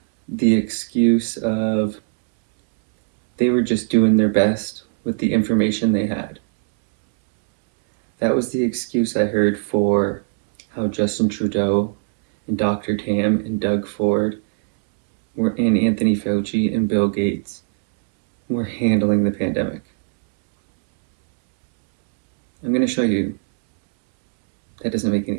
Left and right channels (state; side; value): silent; left; 66 dB below the other